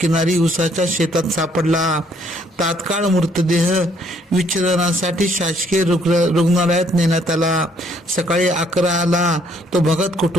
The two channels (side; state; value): both; normal; correlation 0.66